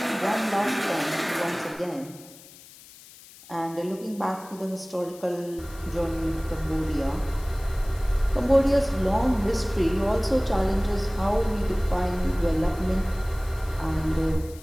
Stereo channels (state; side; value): noise; left; hiss, 21 dB below the sound